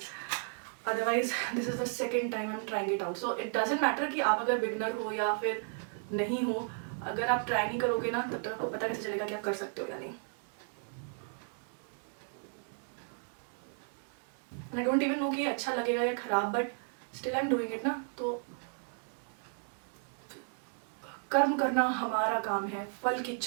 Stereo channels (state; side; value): silent; left; 55 dB below the other